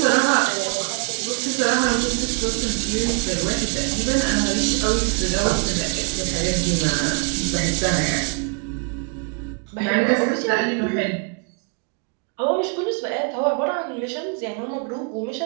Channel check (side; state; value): left; quieter; 34.9 dB